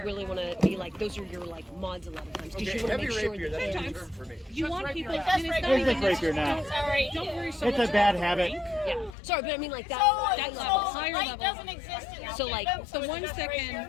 really want to be like. Those are your like mods a lot of times. Because you want to make sure that you want people. There's a rapier now. Don't worry so much. It's a bad habit. Yeah. Sorry, but I mean like that. That level, higher level. Doesn't exist in so like the ones that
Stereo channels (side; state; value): right; drops out; at 9.1 s